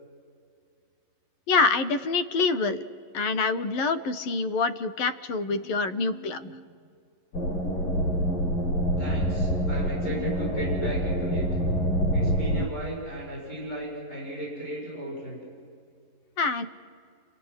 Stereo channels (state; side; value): late; right; 11 ms